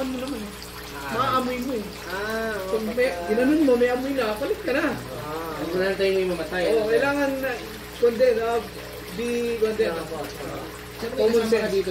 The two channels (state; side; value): identical; both; correlation 1.00